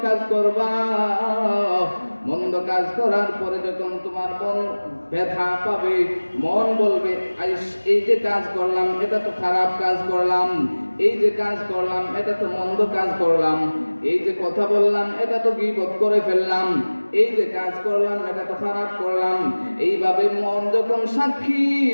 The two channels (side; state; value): both; inverted; correlation -1.00